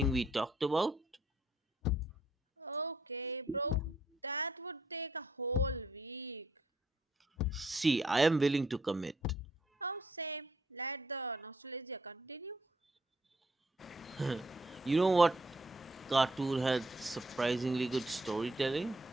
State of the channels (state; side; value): normal; both; correlation 0.69